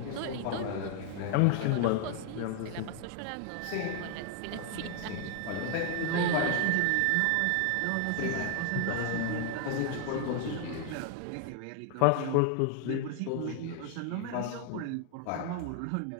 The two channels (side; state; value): both; different; correlation 0.00